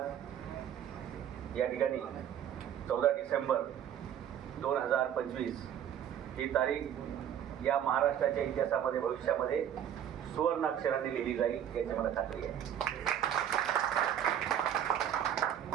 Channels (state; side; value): quieter; left; 9.8 dB